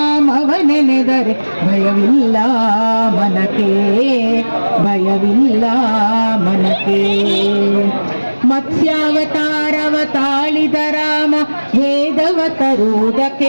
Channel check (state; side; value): inverted; both; correlation -1.00